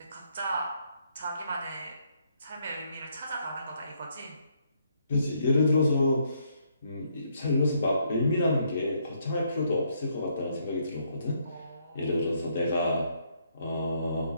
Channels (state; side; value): inverted; both; correlation -0.72